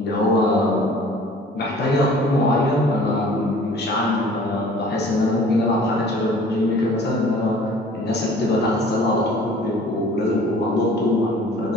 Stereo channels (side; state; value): both; normal; correlation 0.49